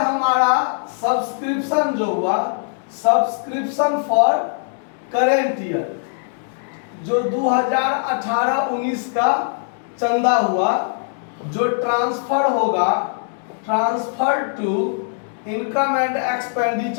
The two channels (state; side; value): silent; right; digital silence